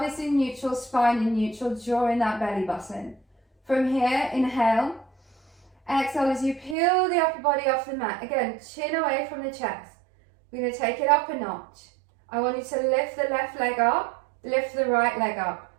in neutral, spine in neutral. Draw in that belly button. From here, inhale. Exhale as you peel the upper body off the mat. Again, chin away from the chest. We're going to take it up a notch. I want you to lift the left leg up, lift the right leg up.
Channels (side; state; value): left; drops out; at 6.8 s